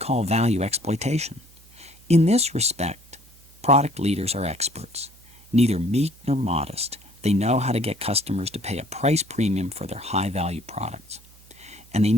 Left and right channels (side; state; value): right; noise; hum, 26 dB below the sound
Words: value exploitation. In this respect, product leaders are experts. Neither meek nor modest, they know how to get customers to pay a price premium for their high-value products. And they